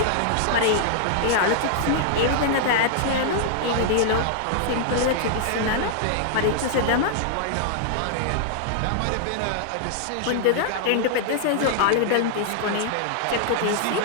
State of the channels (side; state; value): both; different; correlation -0.01